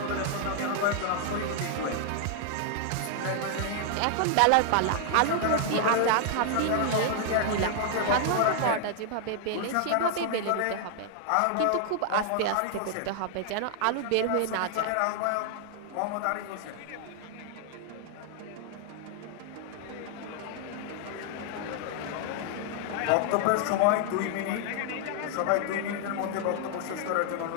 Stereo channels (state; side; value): different; both; correlation 0.00